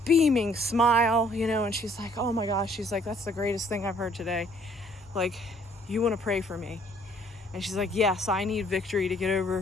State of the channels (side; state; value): both; normal; correlation 0.61